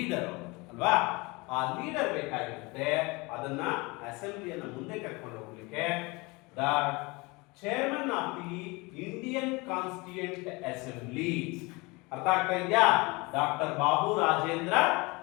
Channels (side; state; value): right; quieter; 25.5 dB